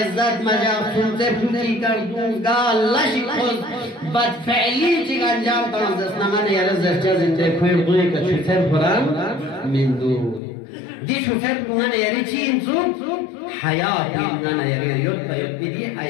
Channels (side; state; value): right; drops out; at 10.4 s